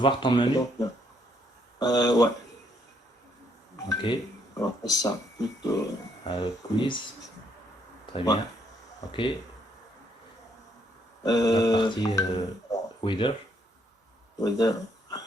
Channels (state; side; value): normal; both; correlation 0.71